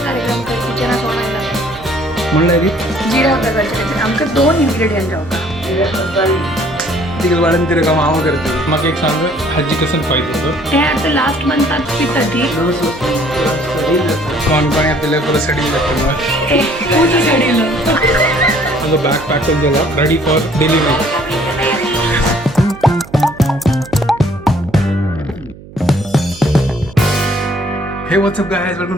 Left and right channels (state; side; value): noise; right; hum, 19 dB below the sound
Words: म्हणलं रे जिरा प्रकारचे आमकां 2 इंग्रेडियंट जावपा तिकडे वाढून तिथे काम आव करते मग एक सांग हाजी कसं पाहिजे होतं ते आता लास्ट मंथात पिता ती कोण कोण आपल्याला पुरं सडी लागतं मग पूर्ण सडीलं माझं बॅग पॅक करून झाला रेडी फॉर डिलिव्हरी हे what's up guys welcome